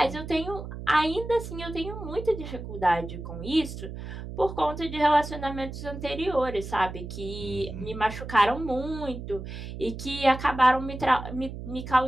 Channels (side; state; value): right; noise; hum, 9 dB below the sound